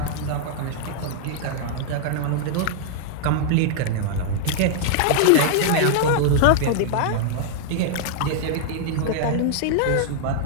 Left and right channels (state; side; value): different; both; correlation -0.01